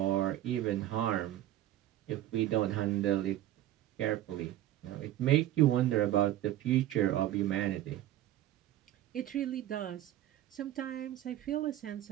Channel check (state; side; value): quieter; left; 13.4 dB